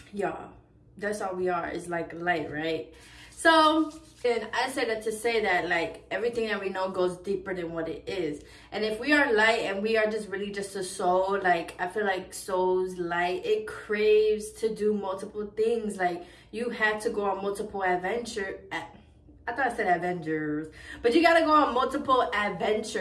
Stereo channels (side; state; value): both; identical; correlation 1.00